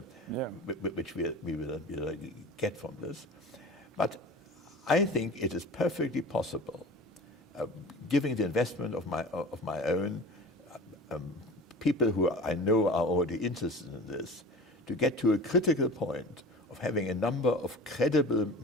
get from this. But I think it is perfectly possible, giving the investment of my own people who I know are already interested in this, to get to a critical point of having a number of credible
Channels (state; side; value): normal; both; correlation 0.38